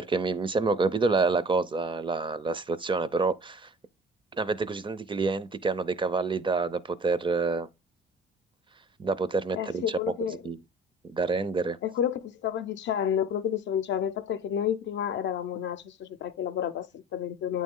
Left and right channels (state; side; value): normal; both; correlation 0.43